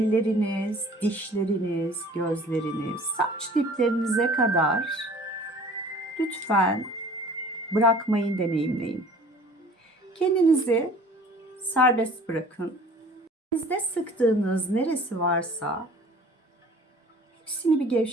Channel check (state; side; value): normal; both; correlation 0.49